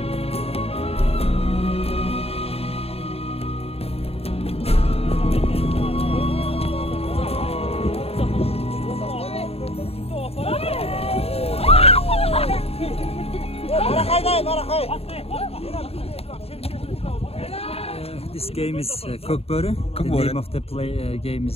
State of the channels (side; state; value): right; late; 0.29 ms